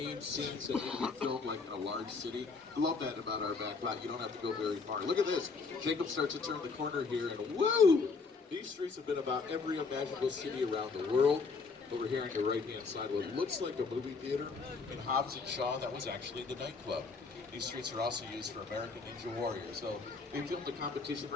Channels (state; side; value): quieter; right; 4.6 dB